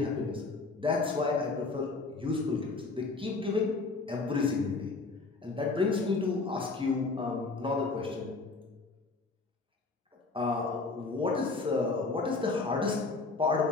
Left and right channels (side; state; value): right; quieter; 3.8 dB